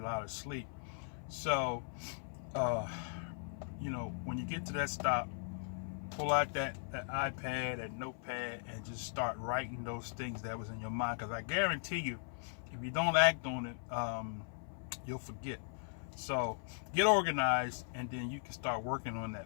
lot of sleep. So, when you get to that stop, pull out that iPad, that notepad, and just start writing those things that was in your mind, because I guarantee you, if you don't act on it, you'll forget. So get organized, and then you can start working on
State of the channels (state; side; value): silent; right; 52 dB below the other